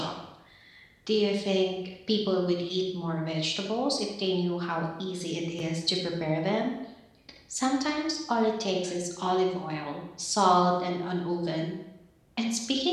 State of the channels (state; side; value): identical; both; correlation 1.00